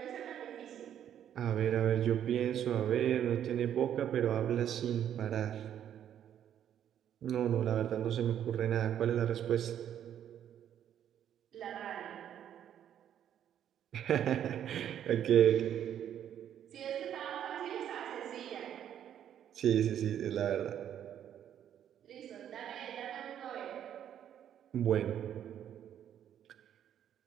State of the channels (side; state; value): left; quieter; 10.0 dB